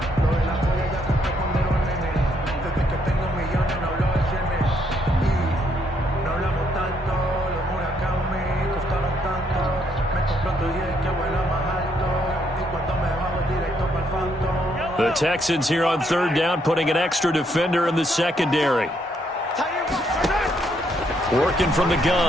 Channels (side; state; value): both; normal; correlation 0.72